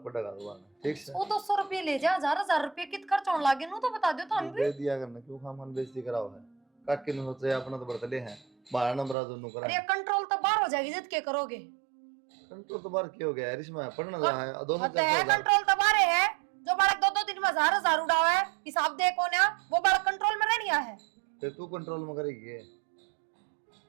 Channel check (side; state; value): left; drops out; at 9.2 s